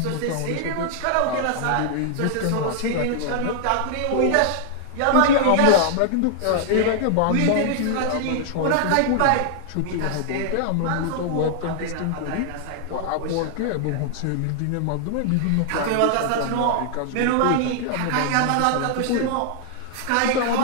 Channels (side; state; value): both; different; correlation 0.00